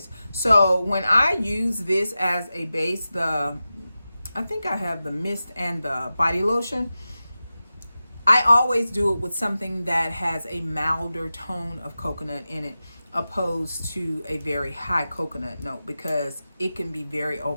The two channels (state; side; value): inverted; both; correlation -0.94